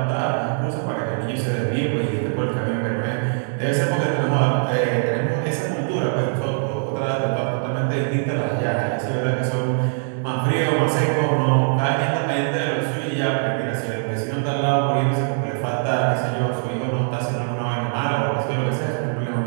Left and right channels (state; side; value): silent; left; digital silence